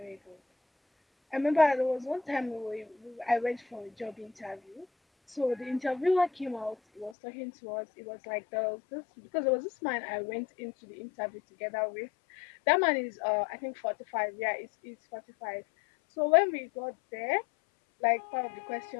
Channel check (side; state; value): right; drops out; at 7.2 s